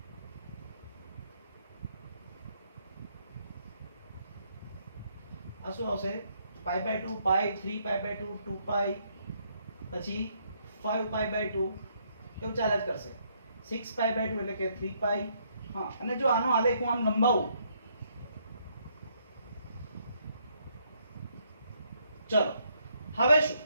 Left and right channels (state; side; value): inverted; both; correlation -0.72